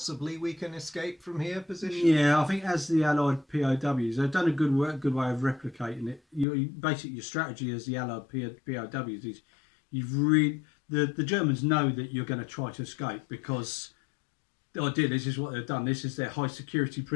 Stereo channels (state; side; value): drops out; right; at 6.5 s